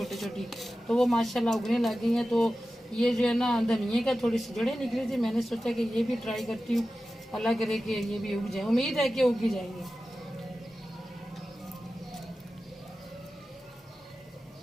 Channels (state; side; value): normal; both; correlation 0.94